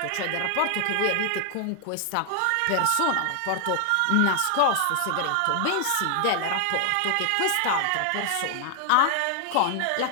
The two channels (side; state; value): both; different; correlation 0.00